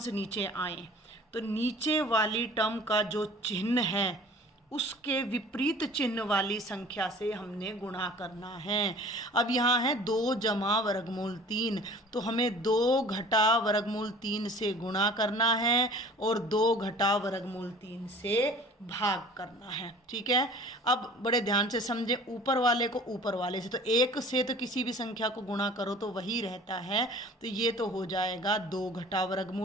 नीचे आए तो नीचे वाली टर्म का जो चिन्ह है उसके विपरीत चिन्ह वाली संख्या से हमने गुणा करना है। अब यहाँ है 2 जमा वर्गमूल 3, तो हमें 2 घटा वर्गमूल 3 से गुणा करना है और 2 घटा वर्गमूल 3 से भाग करना है। ठीक है, अब बड़े ध्यान से समझे, ऊपर वाले को ऊपर वाले से, तो 1 से तो किसी भी संख्या को गुणा करो तो वही रहता है, तो ये तो हो जाएगा 2 घटा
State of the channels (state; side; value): normal; both; correlation 0.46